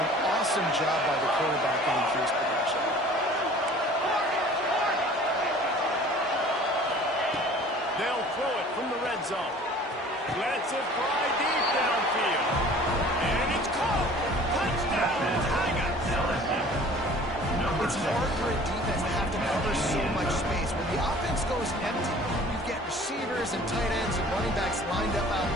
Awesome job by the quarterback in his production. They'll throw it from the red zone. Lets it fly deep downfield. And it's caught. Touchdown, Tigers. It's hard for a defense to have to cover so much space. When the offense goes empty, you get receivers and tight ends and running backs lined up out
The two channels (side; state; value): both; normal; correlation 0.48